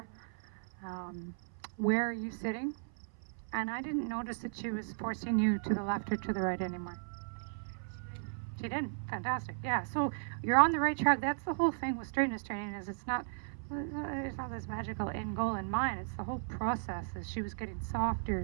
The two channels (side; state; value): left; silent; 54 dB below the other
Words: Where are you sitting? And I didn't notice that she was forcing you to the left or to the right anymore. She did. Fantastic. Yeah. So you're on the right track. That's the whole thing with straightness training is it's not this magical end goal in mind. It's the whole process. As she was getting softer,